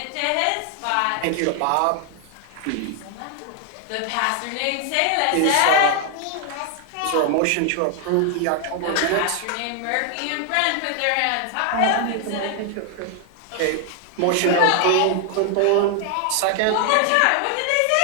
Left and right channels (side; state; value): both; different; correlation 0.00